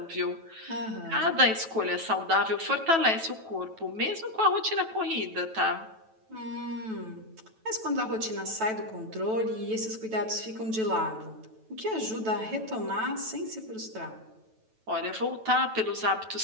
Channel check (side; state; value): left; late; 9.1 ms